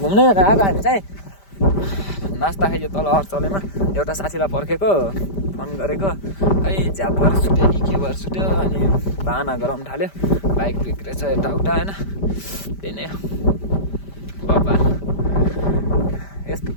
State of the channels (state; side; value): late; right; 5.1 ms